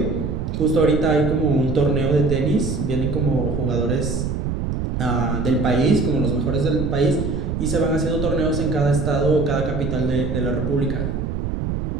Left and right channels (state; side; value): noise; right; rumble, 2 dB below the sound